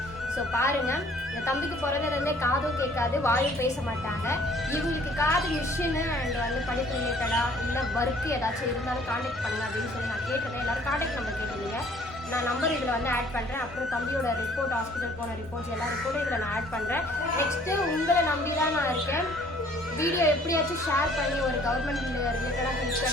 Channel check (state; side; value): normal; both; correlation 0.57